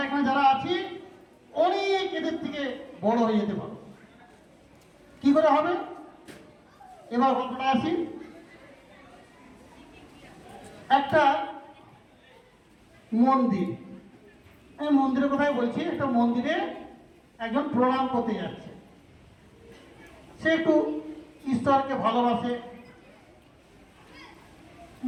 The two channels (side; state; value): both; identical; correlation 1.00